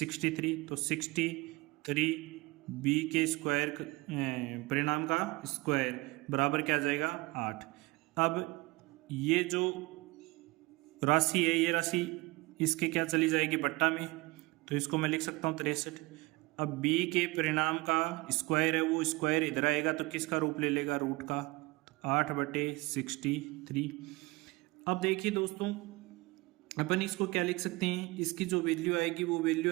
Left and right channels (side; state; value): left; quieter; 23.3 dB